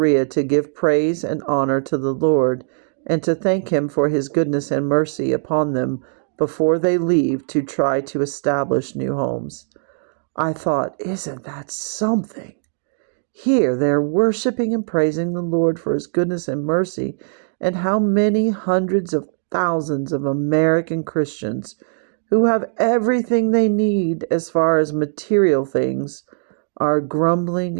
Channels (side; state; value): left; silent; digital silence